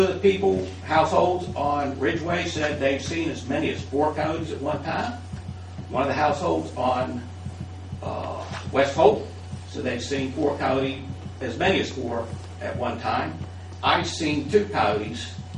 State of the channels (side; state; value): both; identical; correlation 1.00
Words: of the households on Ridgeway said they've seen as many as 4 coyotes at one time. One of the households on West Hope said they've seen 4 coyotes, as many as 4 at one time. I've seen 2 coyotes